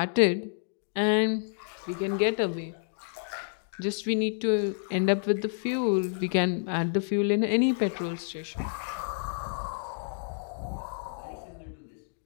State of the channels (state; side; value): silent; right; digital silence